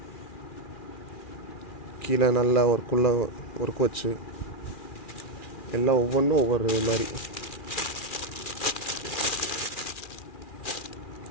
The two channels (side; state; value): right; late; 2.4 ms